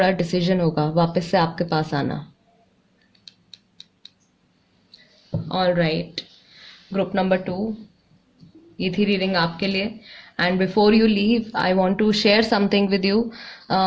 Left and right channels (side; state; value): both; identical; correlation 1.00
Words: डिसीजन होगा वापस से आपके पास आना। ऑल राइट, ग्रुप नंबर 2, ये थी रीडिंग आपके लिए। And before you leave I want to share something with you.